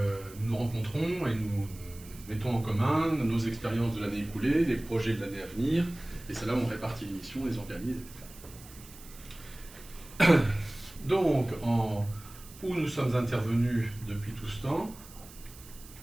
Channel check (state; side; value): noise; right; hiss, 19 dB below the sound